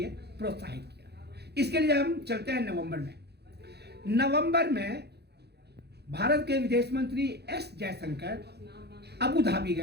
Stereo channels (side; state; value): left; late; 0.48 ms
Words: प्रोत्साहित किया। इसके लिए हम चलते हैं नवंबर में भारत के विदेश मंत्री S जयशंकर अबू धाबी